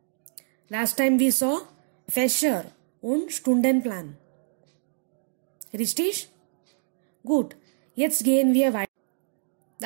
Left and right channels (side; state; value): left; silent; digital silence